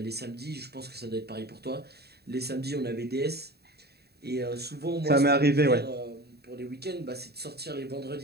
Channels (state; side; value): late; left; 0.47 ms